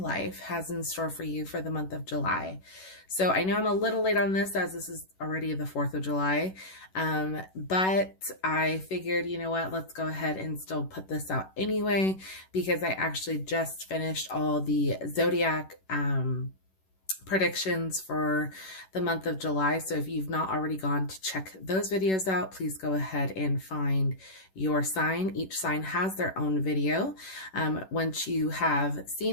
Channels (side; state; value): right; late; 11 ms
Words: has in store for you for the month of July. So I know I'm a little late on this as this is already the 4th of July, but I figured, you know what, let's go ahead and still put this out anyway, because I actually just finished all the zodiac predictions for the month of July. So if you've not already gone to check those videos out, please go ahead and find your sign. Each sign has their own video. Once you have